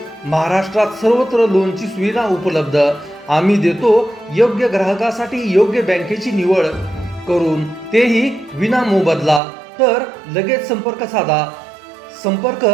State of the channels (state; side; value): drops out; left; at 9.4 s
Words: महाराष्ट्रात सर्वत्र लोनची सुविधा उपलब्ध. आम्ही देतो योग्य ग्राहकासाठी योग्य बँकेची निवड करून, तेही विना मोबदला. तर लगेच संपर्क साधा. संपर्क